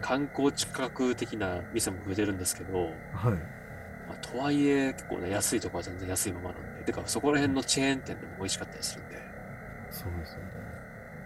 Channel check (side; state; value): both; identical; correlation 1.00